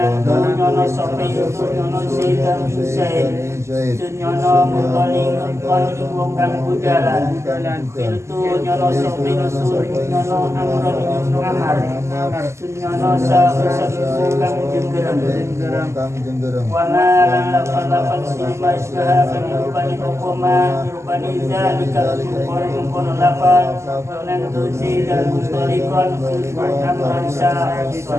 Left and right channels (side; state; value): left; late; 0.13 ms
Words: nyono sapa itu nyono si dan Zaid nyono muntalikon ing wong kang budalan khiltu nyono sapa nusul nyono amron ing amar sunyono syafison kang jenggereng wana lafal silma isyaha penirupani hukuma nirupani zalika kono lafal donan tusi dan mustalikon amron